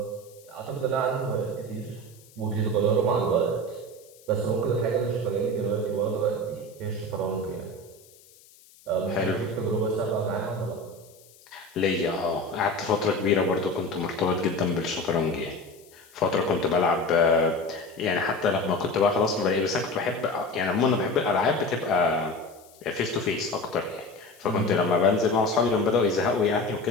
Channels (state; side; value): noise; left; hiss, 26 dB below the sound